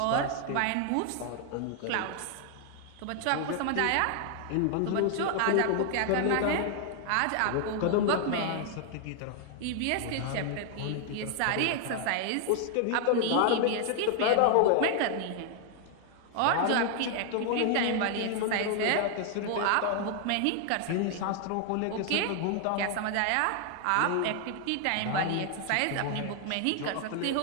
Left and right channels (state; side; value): different; both; correlation 0.00